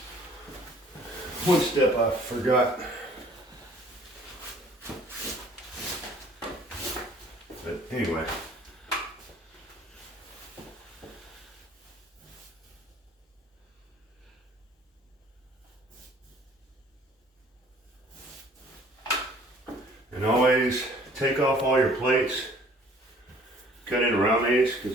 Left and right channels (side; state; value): both; normal; correlation 0.55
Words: One step I forgot. But anyway. And always take off all your plates. Cut in around these,